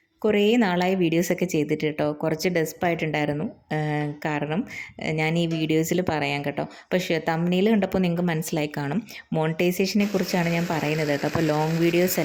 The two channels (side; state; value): both; identical; correlation 1.00